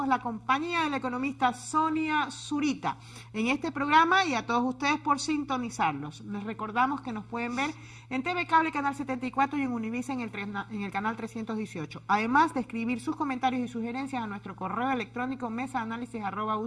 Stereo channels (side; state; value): both; identical; correlation 1.00